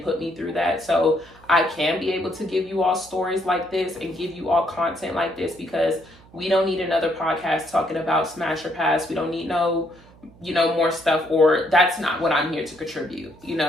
put me through that, so I can be able to give you all stories like this and give you all content like this, because we don't need another podcast talking about smash or pass. We don't need more stuff, or that's not what I'm here to contribute.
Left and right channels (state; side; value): noise; right; hum, 25 dB below the sound